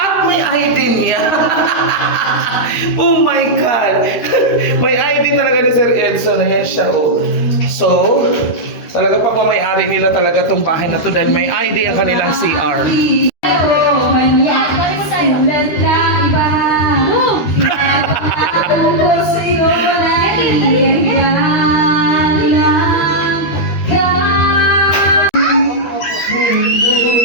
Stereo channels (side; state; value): right; late; 13 ms